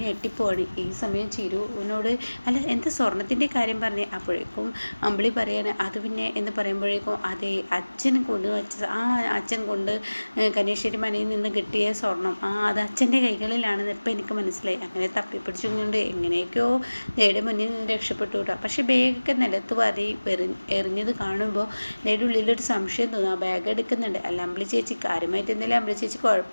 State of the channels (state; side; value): inverted; both; correlation -1.00